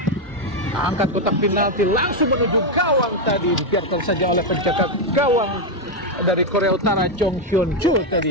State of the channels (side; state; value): both; normal; correlation 0.03